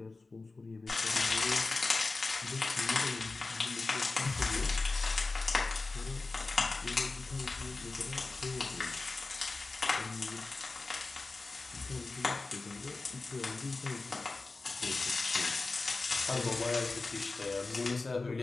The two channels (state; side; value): quieter; right; 3.6 dB